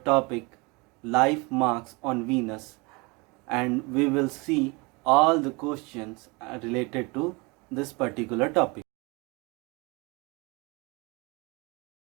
topic life marks on Venus and we will see all the questions related to this particular topic.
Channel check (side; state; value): left; quieter; 27.4 dB